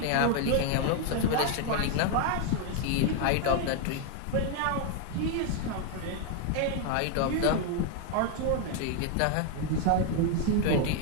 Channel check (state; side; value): different; both; correlation 0.01